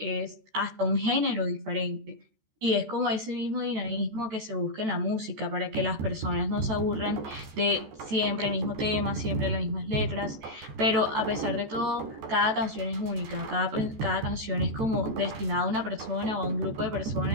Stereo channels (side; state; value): left; late; 14 ms